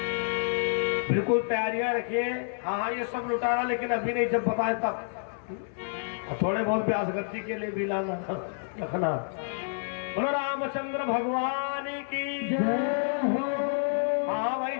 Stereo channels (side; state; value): right; silent; 59 dB below the other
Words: बिल्कुल तैयारियां रखिए। हाँ, ये सब लुटाना, लेकिन अभी नहीं, जब बताए तब। थोड़े बहुत प्यास गति के लिए भी लाना रखना। बोलो रामचंद्र भगवान की जय हो। हाँ भाई,